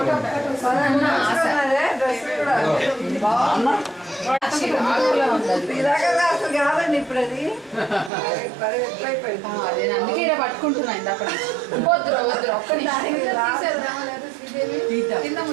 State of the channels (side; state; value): left; drops out; at 8.1 s